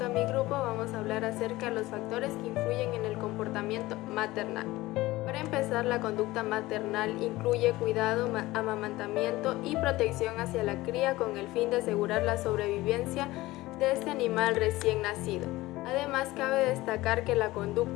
a mi grupo, vamos a hablar acerca de los factores que influyen en el comportamiento maternal. Para empezar, la conducta maternal incluye cuidado, amamantamiento y protección hacia la cría con el fin de asegurar la sobrevivencia de este animal recién nacido. Además, cabe destacar que la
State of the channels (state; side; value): quieter; right; 18.6 dB